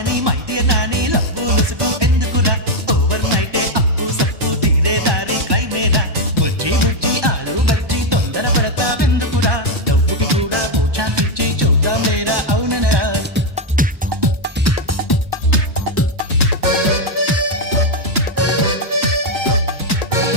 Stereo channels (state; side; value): late; left; 1.2 ms